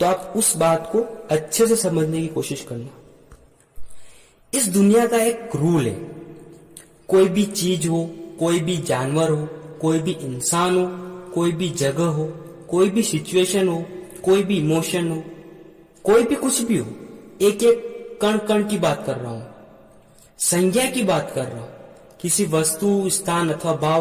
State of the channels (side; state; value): both; identical; correlation 1.00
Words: आप उस बात को अच्छे से समझने की कोशिश करना। इस दुनिया का एक रूल है, कोई भी चीज हो, कोई भी जानवर हो, कोई भी इंसान हो, कोई भी जगह हो, कोई भी सिचुएशन हो, कोई भी इमोशन हो, कोई भी कुछ भी हो, एक एक कण कण की बात कर रहा हूं, संज्ञा की बात कर रहा हूं। किसी वस्तु, स्थान अथवा